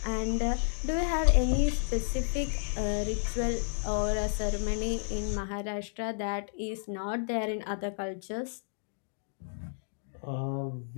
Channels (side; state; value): right; silent; digital silence